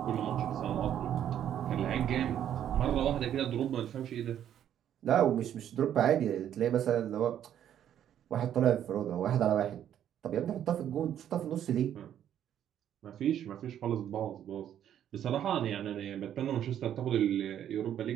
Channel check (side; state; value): left; quieter; 10.3 dB